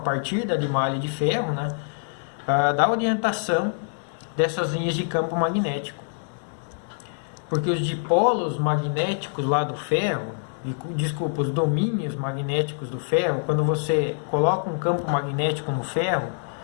da limalha de ferro, né, da orientação dessas linhas de campo magnético. Porque os dipolos magnéticos lá do ferro, desculpa, os domínios magnéticos do ferro, quando você coloca um campo magnético no ferro,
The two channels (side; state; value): right; silent; digital silence